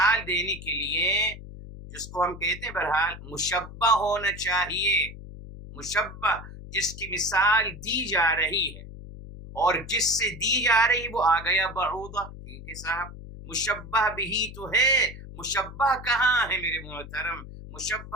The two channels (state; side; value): noise; left; hum, 14 dB below the sound